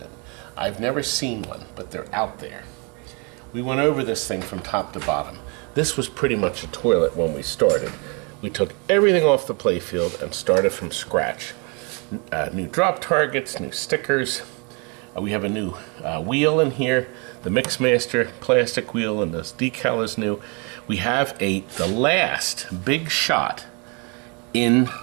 in. I've never seen one, but they're out there. We went over this thing from top to bottom. This was pretty much a toilet when we started. We took everything off the playfield and started from scratch. New drop targets, new stickers. We have a new wheel in here. The Mixmaster plastic wheel and this decal is new. We have the last big shot in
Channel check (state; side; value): quieter; left; 33.0 dB